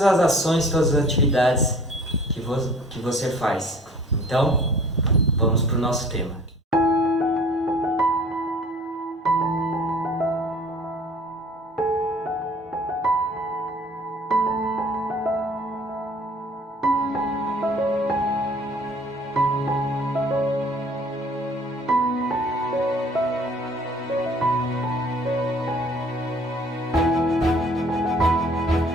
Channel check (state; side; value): normal; both; correlation 0.51